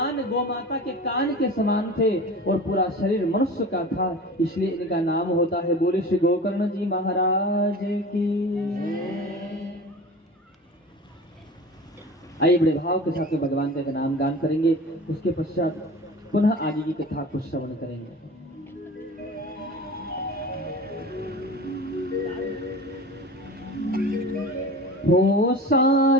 गौ माता के कान के समान थे और पूरा शरीर मनुष्य का था, इसलिए इनका नाम होता है। बोले श्री गोकर्ण जी महाराज की। आइए बड़े भाव के साथ भगवान का नाम गान करेंगे, उसके पश्चात पुनः आगे की कथा को श्रवण करेंगे। हो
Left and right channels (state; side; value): normal; both; correlation 0.36